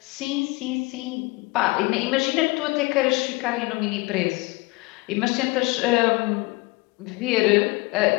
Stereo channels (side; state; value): right; quieter; 24.2 dB